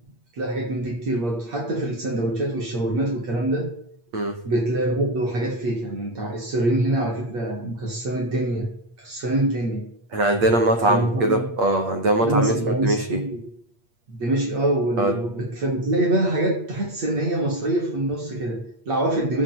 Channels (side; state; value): left; late; 8.5 ms